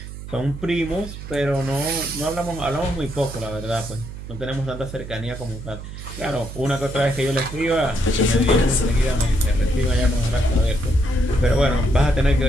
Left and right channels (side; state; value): right; noise; hum, 11 dB below the sound